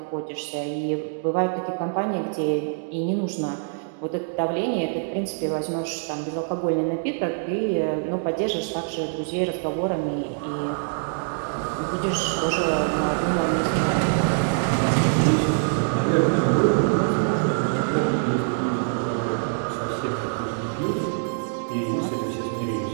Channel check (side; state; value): left; silent; digital silence